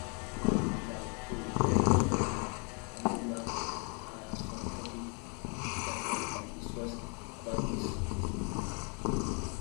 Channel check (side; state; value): right; quieter; 36.1 dB